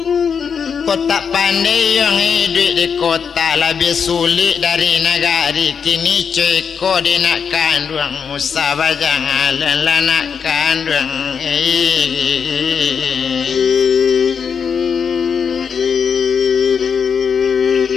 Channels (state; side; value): quieter; right; 6.6 dB